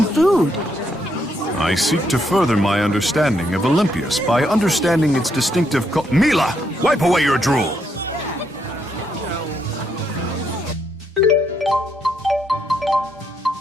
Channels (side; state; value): both; normal; correlation 0.76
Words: food. I seek to further my understanding of Olympias by understanding its distinctive Mila! Wipe away your drool!